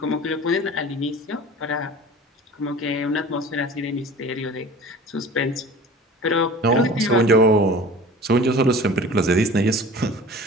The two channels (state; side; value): normal; both; correlation 0.41